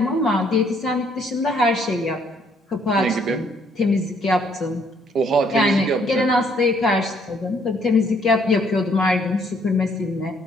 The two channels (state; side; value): normal; both; correlation 0.66